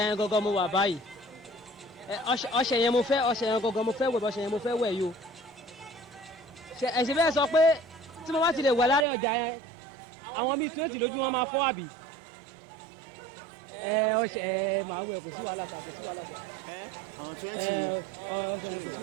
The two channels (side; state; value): left; drops out; at 9.1 s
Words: yẹn gangan mo wà báyìí ọṣẹ yẹn mo fẹ́ gangan mo fẹ́ wẹ̀ ọṣẹ yẹn mo fẹ́ wẹ̀ yìí o ẹ̀sìn bẹ́ẹ̀ sọ pé tí mo bá ti lè wẹ̀ láàrin ọjà yẹn àwọn bíi 20 lójú wọn máa fọ́ àbí ọṣẹ màá wẹ̀ kò sí wàhálà sà kò sí wàhálà sà àwọn 20 ọṣẹ kò sí